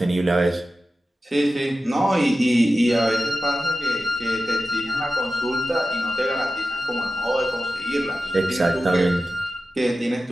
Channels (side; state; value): both; normal; correlation 0.93